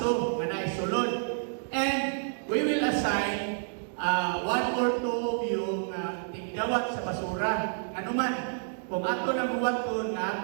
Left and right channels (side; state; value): left; silent; digital silence